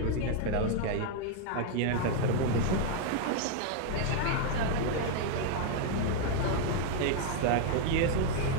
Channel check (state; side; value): different; both; correlation 0.00